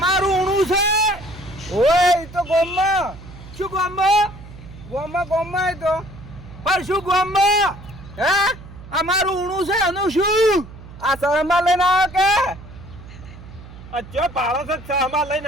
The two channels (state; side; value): noise; right; hum, 17 dB below the sound